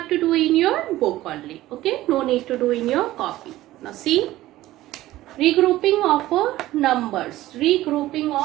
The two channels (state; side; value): quieter; left; 15.9 dB